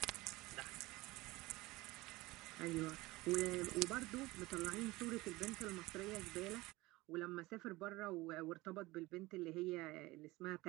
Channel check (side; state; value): left; quieter; 20.4 dB